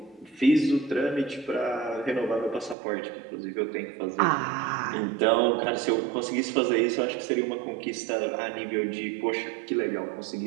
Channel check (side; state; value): left; drops out; at 2.8 s